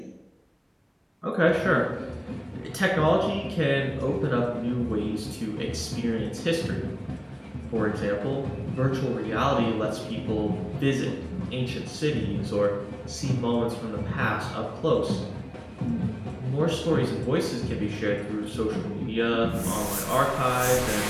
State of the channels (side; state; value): both; identical; correlation 1.00